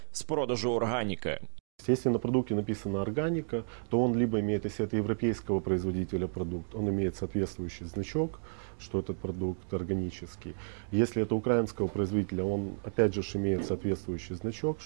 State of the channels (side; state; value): left; silent; digital silence